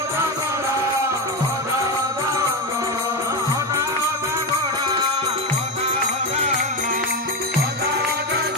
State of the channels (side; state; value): both; normal; correlation 0.14